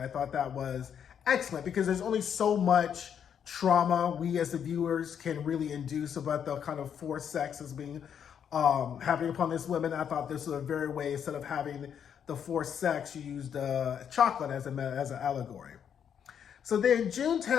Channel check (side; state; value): right; quieter; 8.3 dB